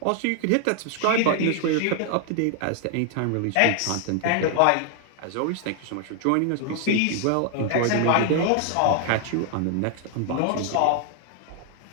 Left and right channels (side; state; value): both; different; correlation 0.00